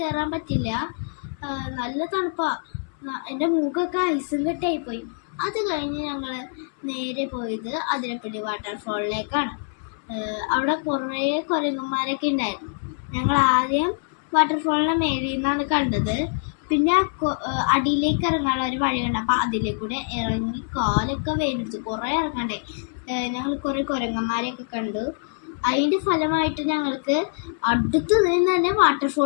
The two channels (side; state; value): right; silent; 61 dB below the other